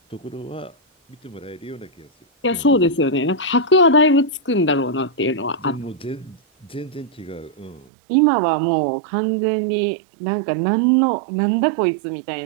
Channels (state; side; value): drops out; left; at 7.9 s